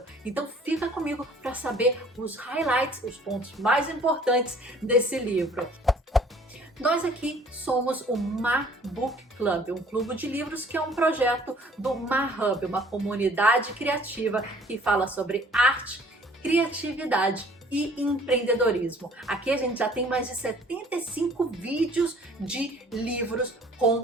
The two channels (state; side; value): normal; both; correlation 0.55